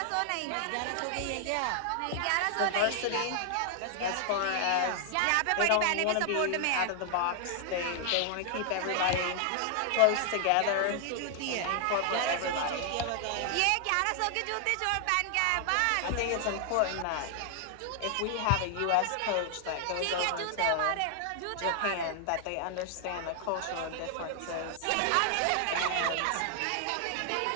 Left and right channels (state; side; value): different; both; correlation 0.00